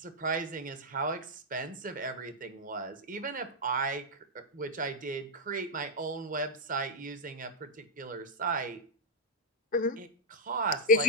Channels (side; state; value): both; normal; correlation 0.01